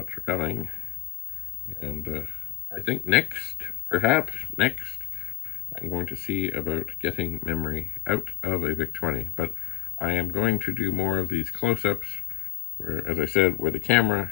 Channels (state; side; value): quieter; right; 18.5 dB